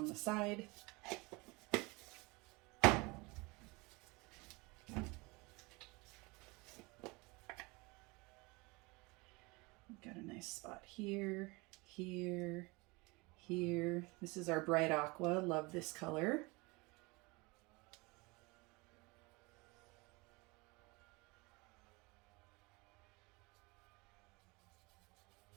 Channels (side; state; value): left; quieter; 25.7 dB